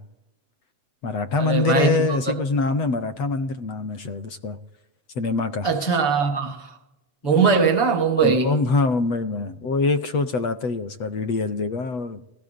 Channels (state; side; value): late; right; 8.1 ms